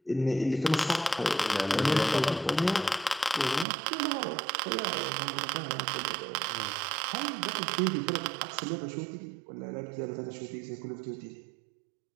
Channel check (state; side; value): drops out; left; at 3.7 s